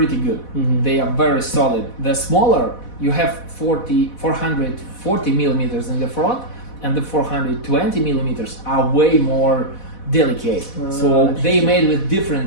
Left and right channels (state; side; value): late; right; 4.1 ms